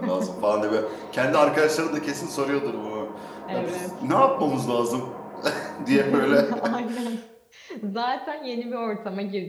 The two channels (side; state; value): both; identical; correlation 1.00